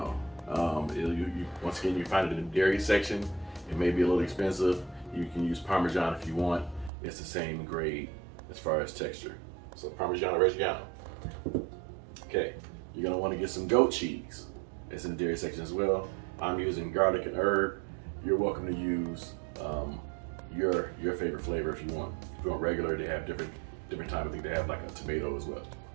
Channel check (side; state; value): left; drops out; at 6.9 s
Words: Once again, you find it in the dairy section. It may be a little expensive. You can use Parmesan if you want. It's the same grade as far as texture. So Parmigiano-Reggiano. Okay, you're gonna want to get some goat cheese. It's in the dairy section as well. I'm using garlic and herb. You're welcome to use your favorite flavor if you want. If you want regular, they have different type. I think they have like a tomato as well.